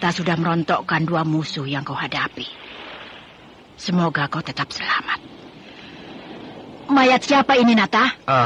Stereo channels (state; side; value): identical; both; correlation 1.00